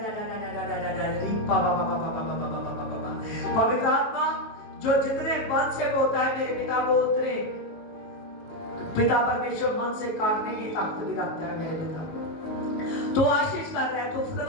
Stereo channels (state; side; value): late; right; 19 ms